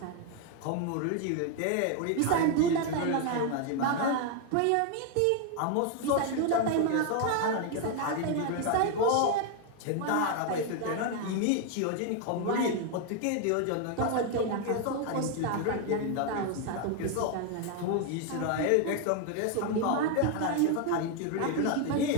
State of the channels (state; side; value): different; both; correlation 0.01